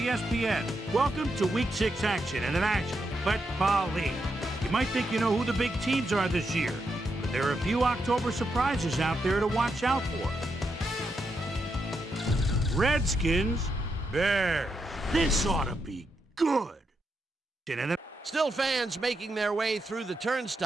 Welcome to Week 6 action in the National Football League. You might think you know who the big teams are this year, but there are a few October surprises out there to watch out for. Redskins, Bears. This ought to be good. Still fans making their way through the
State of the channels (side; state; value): both; normal; correlation 0.83